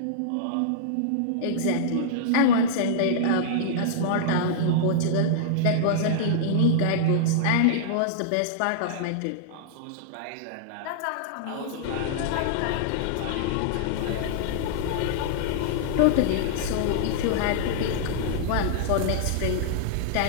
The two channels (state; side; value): different; both; correlation -0.02